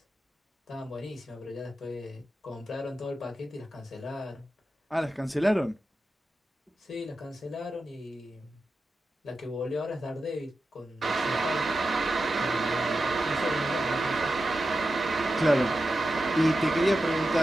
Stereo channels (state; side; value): normal; both; correlation 0.91